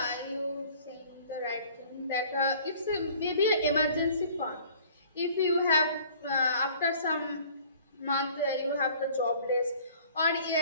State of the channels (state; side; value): inverted; both; correlation -0.51